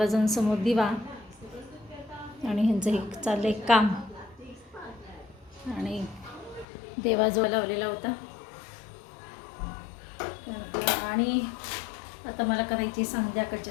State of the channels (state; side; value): drops out; right; at 6.7 s